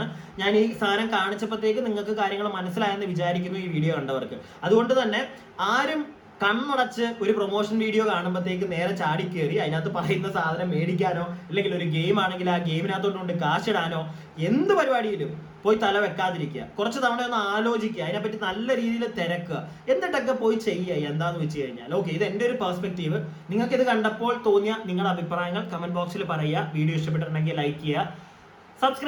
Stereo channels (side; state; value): both; identical; correlation 1.00